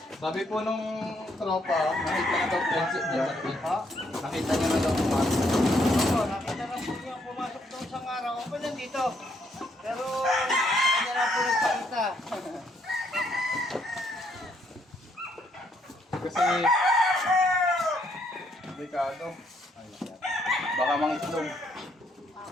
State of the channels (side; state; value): both; normal; correlation 0.72